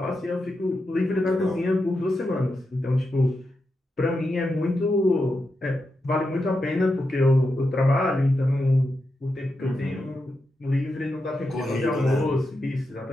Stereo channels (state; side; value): normal; both; correlation 0.87